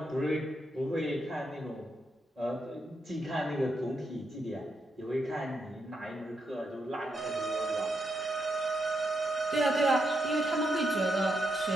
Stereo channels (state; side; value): normal; both; correlation 0.81